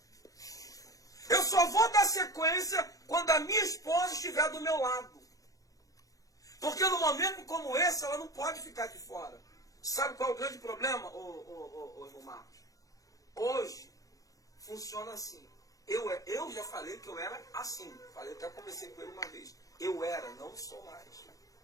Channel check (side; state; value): right; late; 0.17 ms